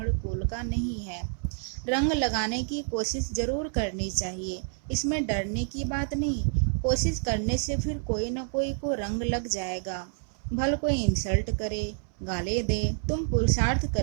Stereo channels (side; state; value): left; silent; 59 dB below the other